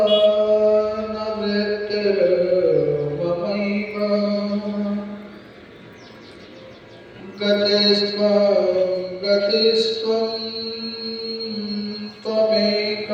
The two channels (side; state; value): both; identical; correlation 1.00